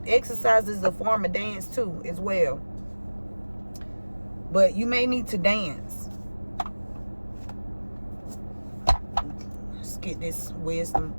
Exercise is a form of dance too, as well. But you may need to dance. Let's get this wisdom.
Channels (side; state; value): both; inverted; correlation -1.00